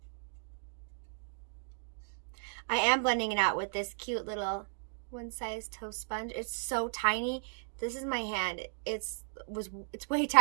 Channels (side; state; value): left; silent; digital silence